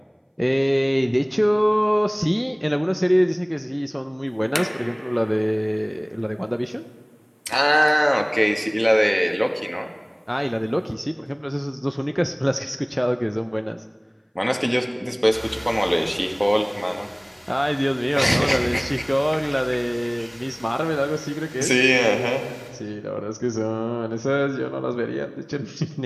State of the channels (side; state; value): both; identical; correlation 1.00